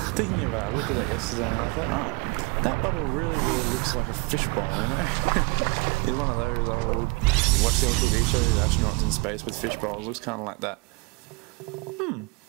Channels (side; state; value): left; quieter; 28.5 dB